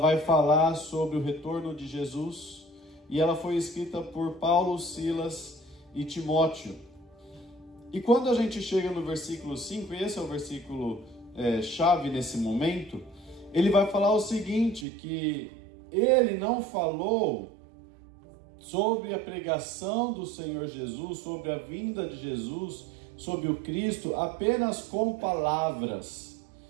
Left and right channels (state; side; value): drops out; left; at 14.9 s